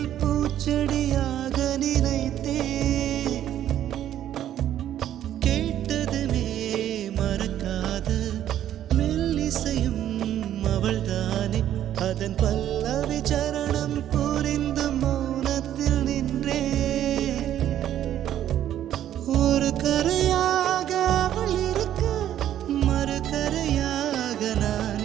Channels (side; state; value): left; quieter; 11.4 dB